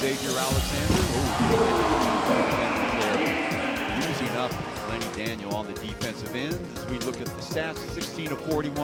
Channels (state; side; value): identical; both; correlation 1.00